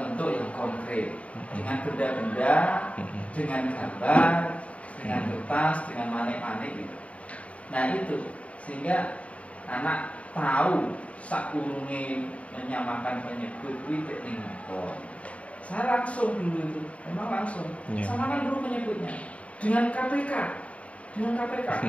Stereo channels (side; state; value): right; late; 0.065 ms